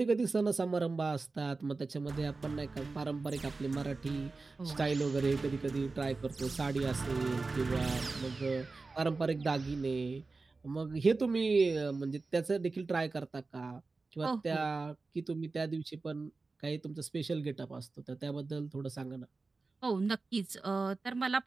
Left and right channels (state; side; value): quieter; left; 3.8 dB